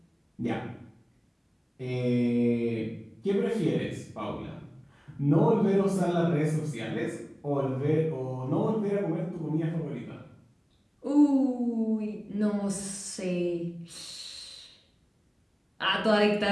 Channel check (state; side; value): identical; both; correlation 1.00